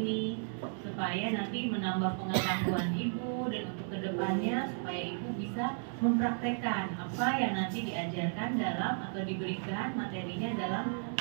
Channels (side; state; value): left; silent; 55 dB below the other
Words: supaya nanti menambah pengetahuan Ibu dan untuk kedepannya supaya Ibu bisa mempraktekkan apa yang nanti diajarkan dalam atau diberikan materinya dalam